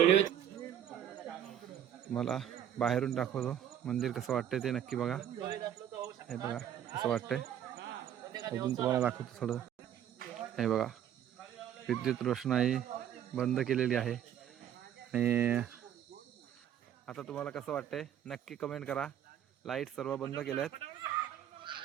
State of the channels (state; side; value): quieter; left; 10.3 dB